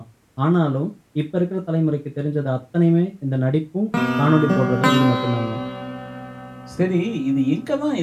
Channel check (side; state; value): both; identical; correlation 1.00